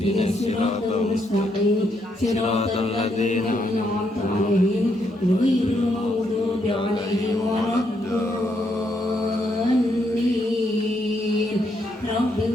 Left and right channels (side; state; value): both; normal; correlation 0.76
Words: siratal mustaqim. Siratal ladzina an'amta 'alaihim ghairil maghdubi 'alaihim waladdallin.